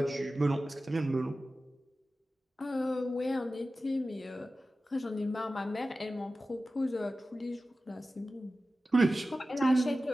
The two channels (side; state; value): both; normal; correlation 0.95